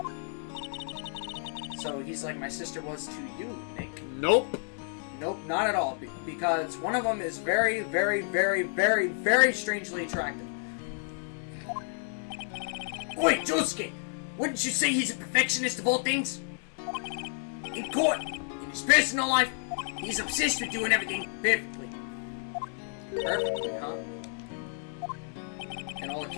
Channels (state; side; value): silent; right; 57 dB below the other